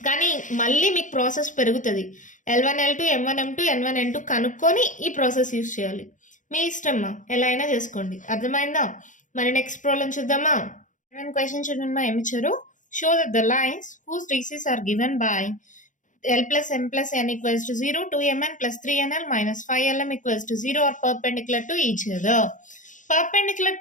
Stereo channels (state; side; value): late; right; 0.37 ms